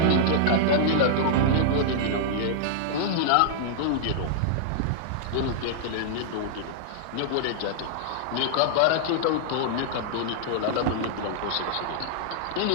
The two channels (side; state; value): both; different; correlation -0.01